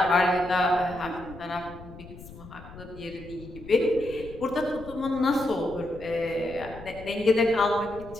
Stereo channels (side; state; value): left; noise; rumble, 16 dB below the sound